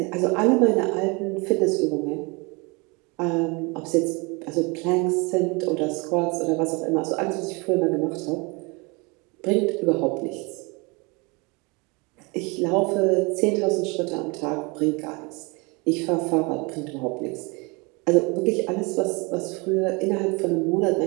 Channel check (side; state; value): left; quieter; 28.4 dB